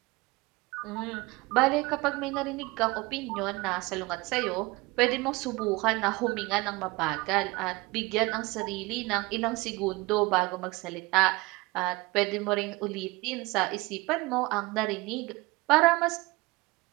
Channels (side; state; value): left; quieter; 23.2 dB